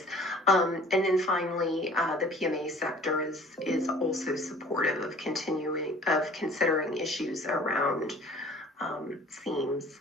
And then finally, the PMA sector is also supportive of considering issues around themes.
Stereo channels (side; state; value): both; normal; correlation 0.50